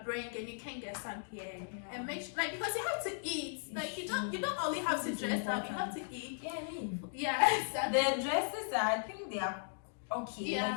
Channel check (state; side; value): silent; right; digital silence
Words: bringing you can get some here and make sure, like, because you have to eat. Like you don't only have to dress up, you have to eat. Exactly. The dresses are, I think they are okay.